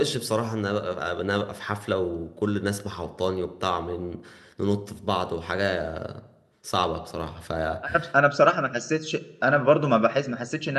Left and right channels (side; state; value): both; identical; correlation 1.00